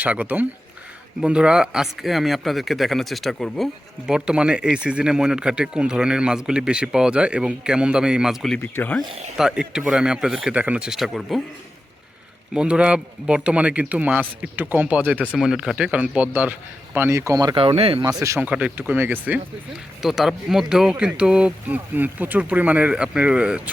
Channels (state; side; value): normal; both; correlation 0.91